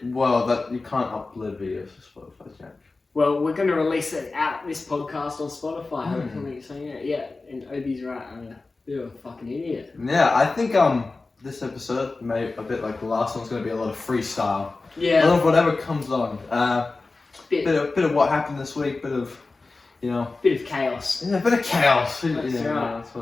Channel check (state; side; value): quieter; right; 3.6 dB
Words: well, that you can't upload videos to Spotify, Jack. Well, we're going to release it out this podcast on Spotify. Hopefully, so yeah. And Obi's right. I'm a bit of a fucking idiot. Yeah, I think this episode, maybe a bit like the last one's going to be a lot of freestyle. Yeah. A lot of whatever comes on. Bit of what happened this week. Bit of chaos. Yeah, a bit of chaos. That's right. That's